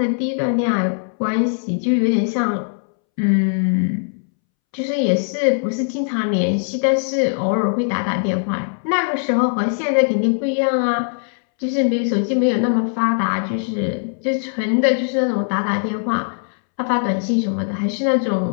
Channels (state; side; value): silent; right; 65 dB below the other